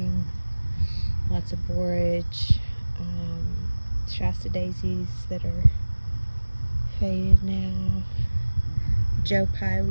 Lots of borage, Shasta daisies that are faded now. Joe Pye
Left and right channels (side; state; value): both; inverted; correlation -1.00